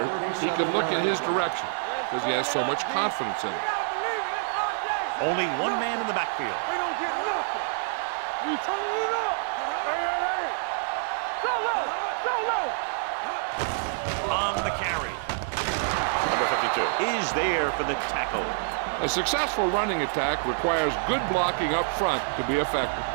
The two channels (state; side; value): silent; left; digital silence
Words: he can look in his direction because he has so much confidence in it. Only one man in the backfield. We don't get nothing. We turn it up. Hey. Go low. On the carry. Number 52 is there for the tackle. A successful running attack requires good blocking up front to be effective.